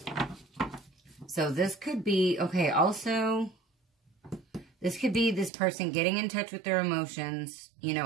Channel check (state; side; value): drops out; left; at 5.5 s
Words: So this could be, okay, also, This could be this person getting in touch with their emotions, you